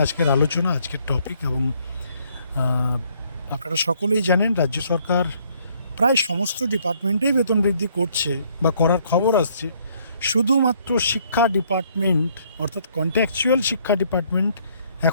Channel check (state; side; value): inverted; both; correlation -0.66